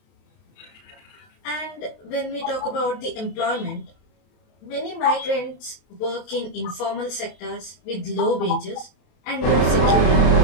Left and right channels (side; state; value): right; late; 32 ms